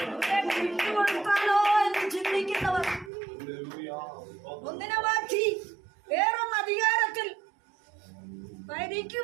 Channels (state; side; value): drops out; left; at 3.1 s